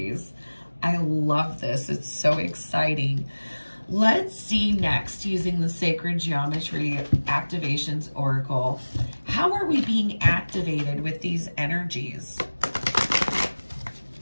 I love this. It's so exciting. Let's see next, using the Sacred Geometry Activations Oracle. How are we being activated with these energies?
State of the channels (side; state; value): both; inverted; correlation -1.00